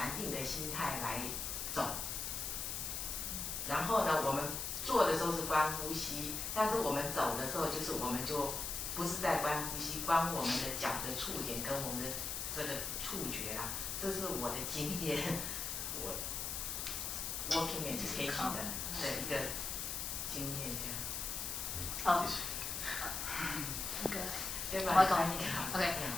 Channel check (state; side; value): noise; left; hiss, 3 dB below the sound